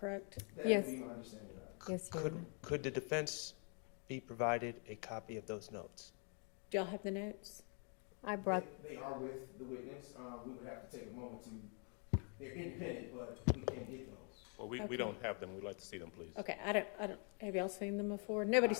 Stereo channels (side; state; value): right; quieter; 39.5 dB